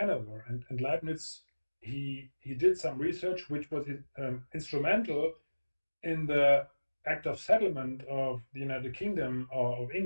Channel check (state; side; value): inverted; both; correlation -1.00